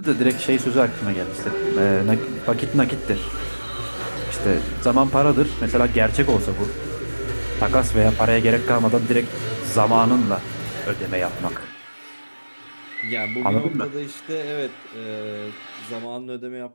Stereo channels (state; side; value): inverted; both; correlation -1.00